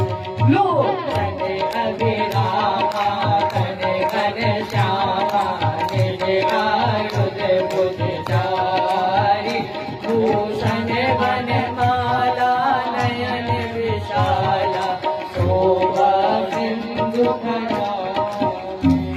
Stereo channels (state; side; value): identical; both; correlation 1.00